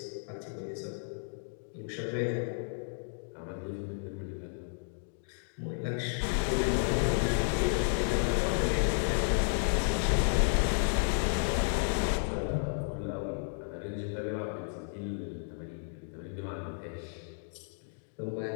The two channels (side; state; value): right; silent; digital silence